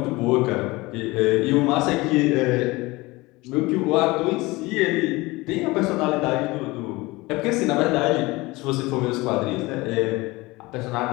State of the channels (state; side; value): quieter; right; 21.8 dB